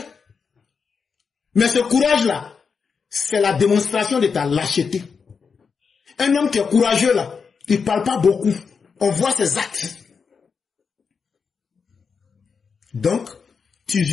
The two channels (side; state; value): right; quieter; 5.7 dB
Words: Mais ce courage-là, c'est la démonstration de ta lâcheté. Un homme qui est courageux là, il ne parle pas beaucoup. On voit ses actes. Donc, tu